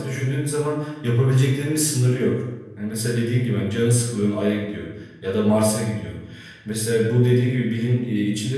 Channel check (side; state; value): both; identical; correlation 1.00